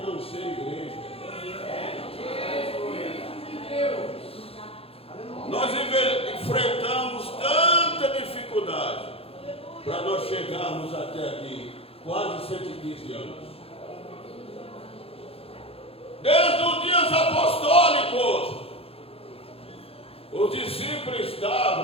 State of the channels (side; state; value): right; late; 0.28 ms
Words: não ser igreja. Nós enfrentamos tanta dificuldade para nós chegarmos até aqui, quase 115 anos. Desde os dias apostólicos, os discípulos